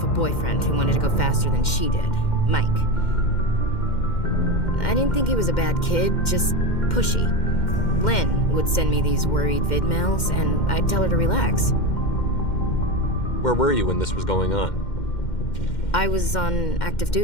a boyfriend who wanted to go faster than she did, Mike. I didn't think he was a bad kid, just pushy. Lynn would send me these worried vid mails, and I'd tell her to relax. Where were you when this was going on? I was on active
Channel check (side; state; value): right; late; 2.1 ms